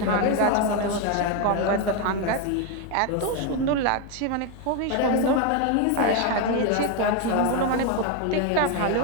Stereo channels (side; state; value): both; different; correlation 0.02